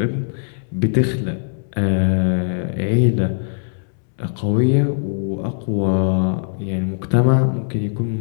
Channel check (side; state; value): right; silent; 66 dB below the other